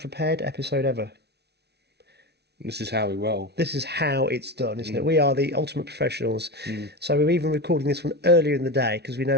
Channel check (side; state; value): left; late; 0.49 ms